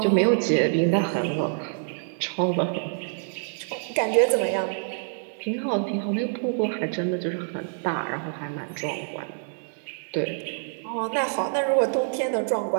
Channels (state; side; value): silent; left; 61 dB below the other